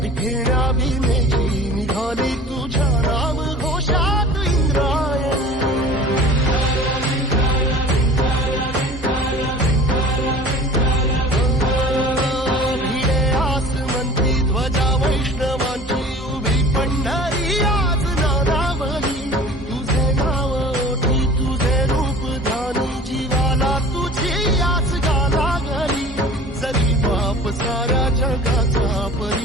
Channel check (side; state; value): both; normal; correlation 0.43